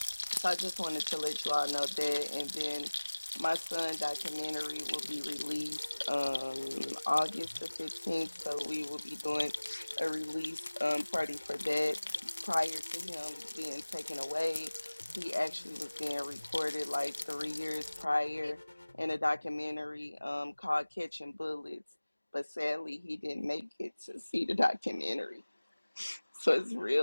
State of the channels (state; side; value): inverted; both; correlation -1.00